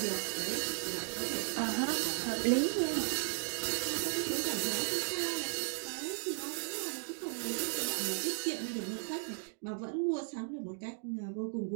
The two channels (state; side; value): silent; left; 54 dB below the other